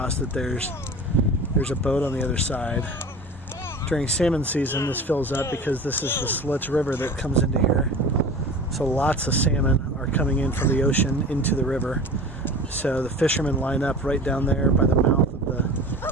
that there's a boat on the other side. During salmon season, this fills up because this is the Slits River that comes into here. So lots of salmon are coming in from the ocean into the river. So the fishermen line up right down there by the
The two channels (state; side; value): normal; both; correlation 0.37